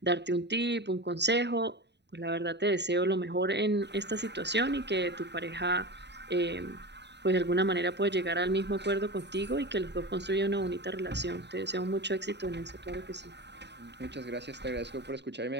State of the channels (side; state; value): left; late; 0.50 ms